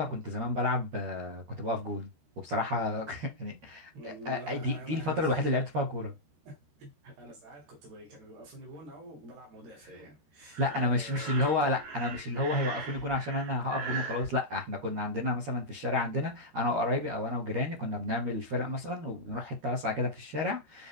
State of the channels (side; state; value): left; late; 13 ms